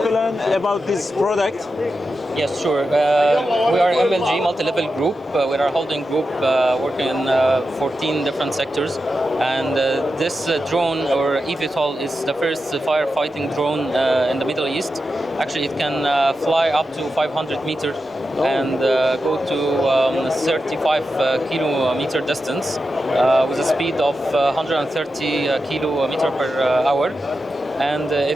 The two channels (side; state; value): both; normal; correlation 0.90